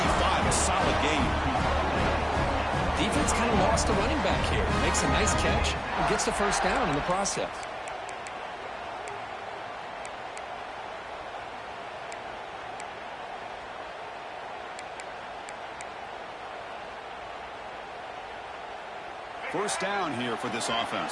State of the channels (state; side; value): identical; both; correlation 1.00